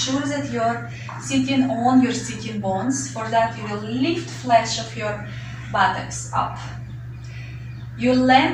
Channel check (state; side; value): identical; both; correlation 1.00